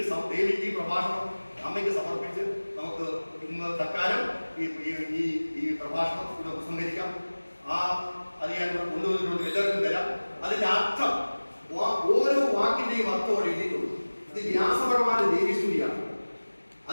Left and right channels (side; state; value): both; inverted; correlation -1.00